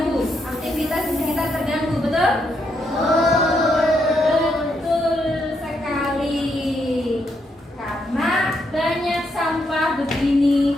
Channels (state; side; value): normal; both; correlation 0.78